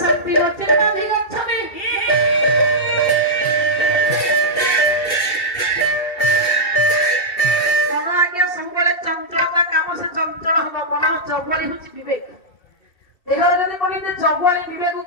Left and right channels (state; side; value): late; right; 2.7 ms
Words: ଶାନ୍ତି ଗଚ୍ଛତି ମନ ଆଜ୍ଞା ସବୁବେଳେ ଚଞ୍ଚଳତା କାମ ସେ ଚଞ୍ଚଳ ହବ। ମନ ଜଗୁଆଳି ହେଉଛି ବିବେକ। ଦେହରେ ଯଦି କହିଲେ ଜଗୁଆଳି